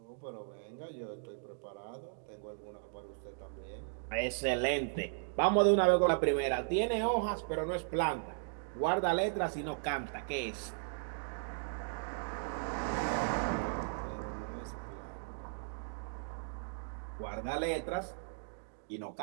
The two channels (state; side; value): silent; left; digital silence